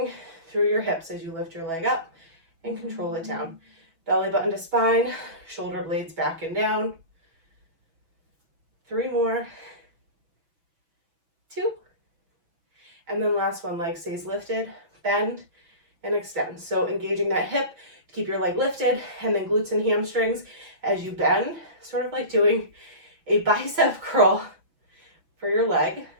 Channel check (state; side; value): late; left; 6.1 ms